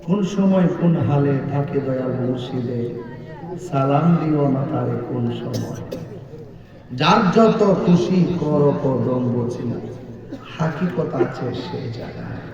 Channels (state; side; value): identical; both; correlation 1.00